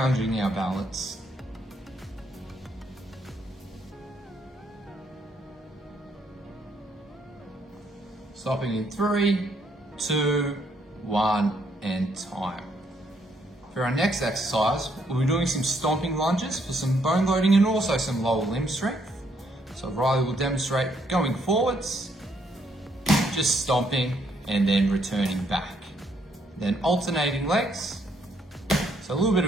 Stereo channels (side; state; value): both; normal; correlation 0.71